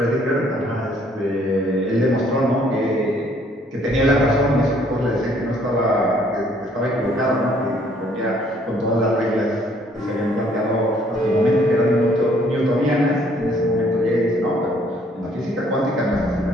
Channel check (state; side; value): normal; both; correlation 0.63